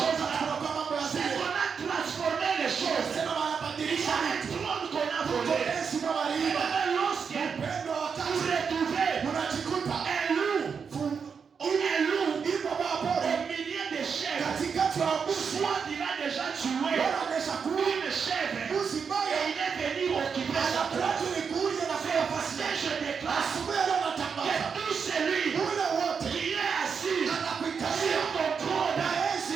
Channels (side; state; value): left; quieter; 6.1 dB